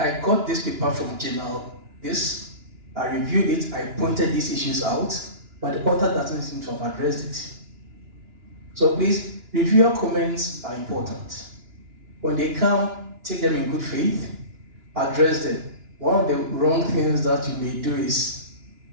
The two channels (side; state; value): left; late; 2.9 ms